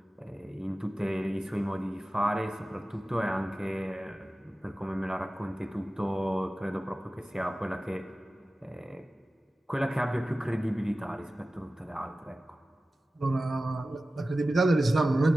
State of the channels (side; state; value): both; normal; correlation 0.95